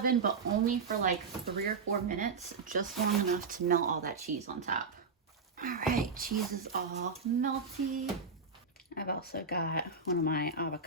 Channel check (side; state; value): left; quieter; 4.7 dB